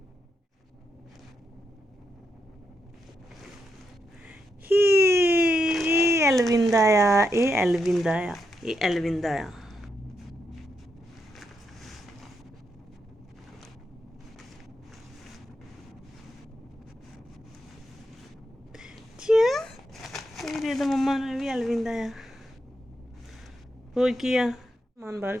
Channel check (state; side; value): normal; both; correlation 0.82